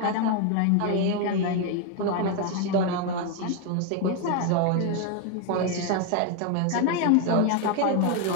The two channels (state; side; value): different; both; correlation 0.01